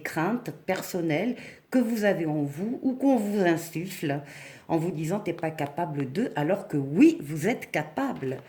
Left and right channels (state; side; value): identical; both; correlation 1.00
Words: craintes personnelles que vous avez en vous ou qu'on vous insuffle en vous disant t'es pas capable de, alors que oui, vous êtes capable,